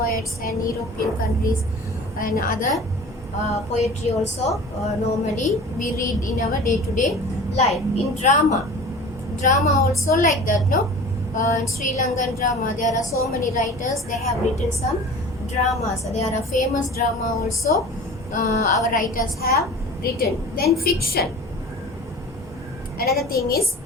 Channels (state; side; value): normal; both; correlation 0.40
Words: and European countries and other poetry also normally we read in our day-to-day life. In drama also like that, no? In Sri Lankan drama there are so many writers, they have written some dramas. There are famous drama also our writers have written. Then fiction. Another thing is